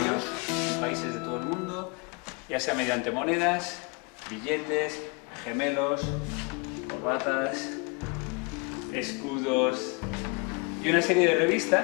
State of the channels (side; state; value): right; quieter; 31.2 dB